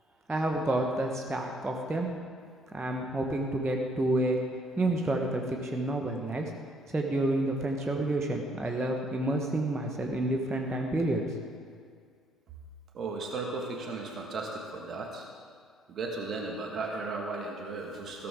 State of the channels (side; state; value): both; normal; correlation 0.68